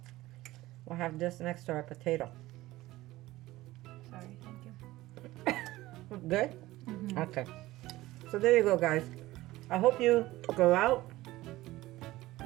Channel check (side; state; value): left; quieter; 17.5 dB